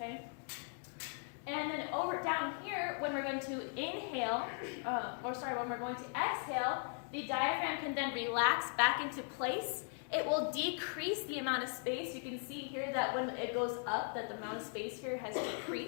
And then over down here, when we're going to inhale, when we're going to exhale, the diaphragm can then relax back into place. It will decrease the amount of space. You can see here that when it goes up, that the amount of space here has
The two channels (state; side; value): silent; right; 52 dB below the other